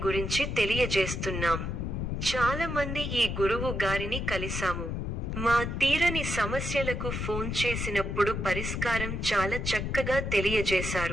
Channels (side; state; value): left; noise; rumble, 3 dB below the sound